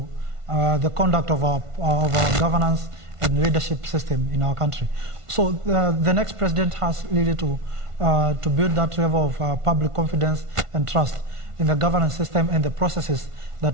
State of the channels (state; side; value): late; left; 1.5 ms